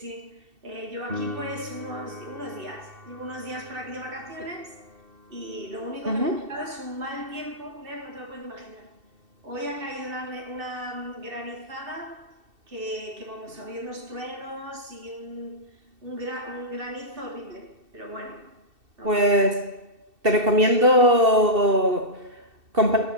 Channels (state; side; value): late; left; 2.7 ms